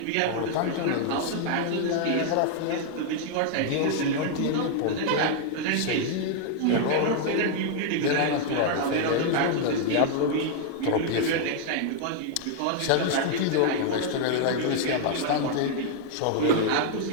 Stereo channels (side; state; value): both; different; correlation 0.00